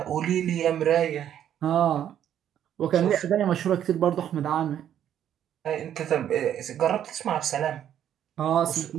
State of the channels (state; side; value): quieter; left; 10.2 dB